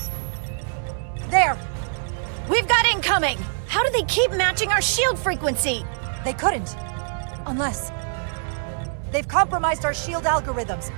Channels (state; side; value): silent; left; digital silence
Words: There! We've got incoming! How do they keep matching our shield frequency? They couldn't. Unless... They've compromised our shield algorithms.